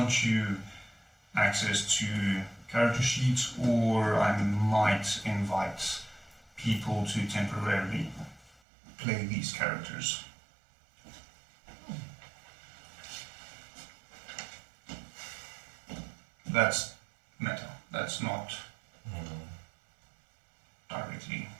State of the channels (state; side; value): drops out; left; at 8.6 s